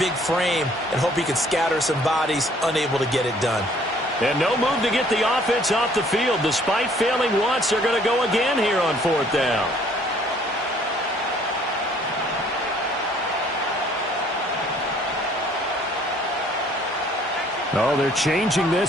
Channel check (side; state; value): both; normal; correlation 0.59